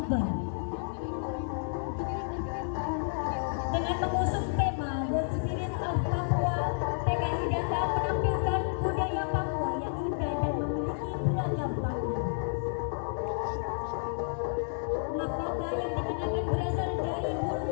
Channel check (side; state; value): right; silent; digital silence